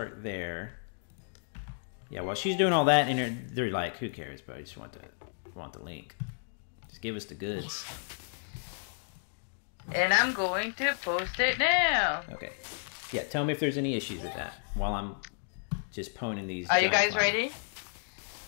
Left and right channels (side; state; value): right; silent; digital silence